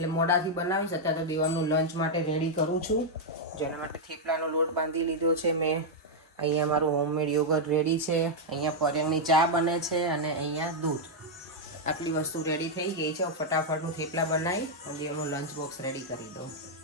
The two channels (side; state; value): both; normal; correlation -0.02